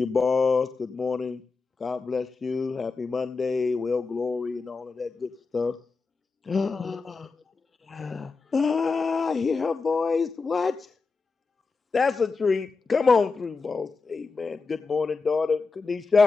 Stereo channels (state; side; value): quieter; right; 4.4 dB